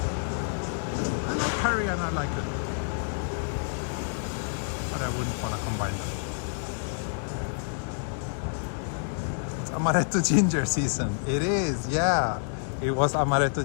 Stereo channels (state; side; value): silent; right; digital silence